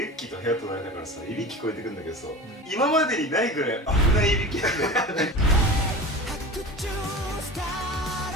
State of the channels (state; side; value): normal; both; correlation 0.32